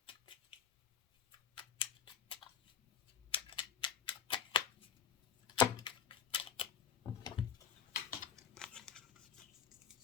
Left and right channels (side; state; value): right; quieter; 7.9 dB